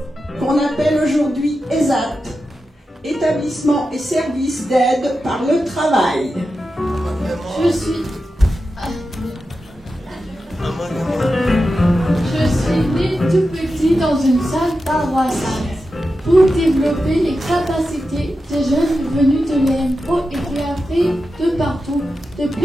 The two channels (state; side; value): normal; both; correlation 0.91